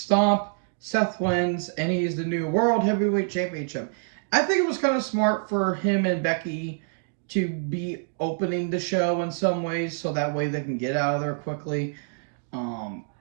Seth wins, and he's the new World Heavyweight Championship. I think it was kind of smart for him and Becky to be opening the show in some ways, so that way they can get out of there quickly.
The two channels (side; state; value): left; silent; digital silence